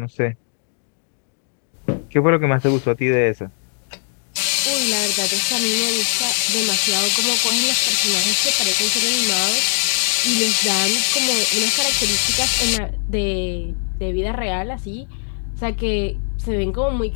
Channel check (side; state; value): right; silent; digital silence